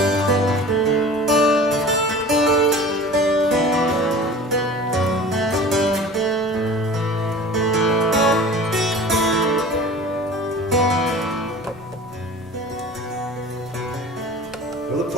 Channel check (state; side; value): normal; both; correlation 0.40